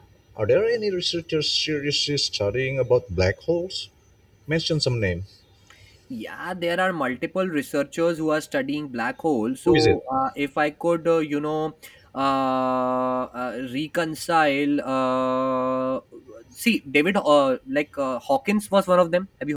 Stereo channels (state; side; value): identical; both; correlation 1.00